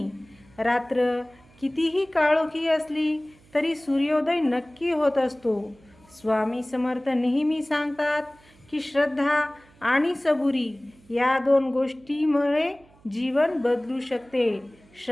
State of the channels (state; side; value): noise; right; hum, 28 dB below the sound